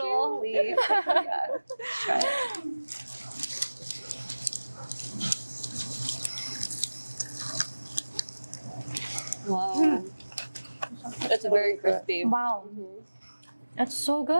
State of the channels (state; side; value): inverted; both; correlation -1.00